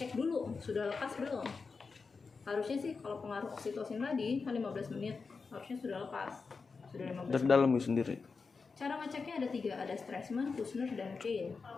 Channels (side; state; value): right; quieter; 4.7 dB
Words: dulu sudah lepas belum. Harusnya sih kalau pengaruh oksitosin tadi kan 15 menit, harusnya sudah lepas. Sudah 15 Dari menit. dalam sendiri. Cara ngeceknya ada 3, ada Stresemann, Kushner, dan Kane.